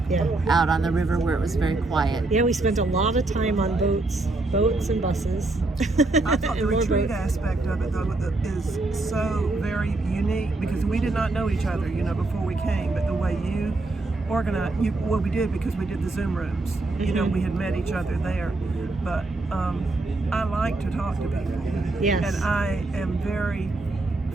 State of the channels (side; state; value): left; quieter; 3.1 dB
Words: out on the river where it was very quiet. Yeah, we spent a lot of time on boats and buses. I thought the retreat aspect of it, though, is so very unique, because we did not know each other, before we came, but the way you organized, we did, because we did the Zoom rooms. We had met each other there. But I like to talk to people. Yes. And I am very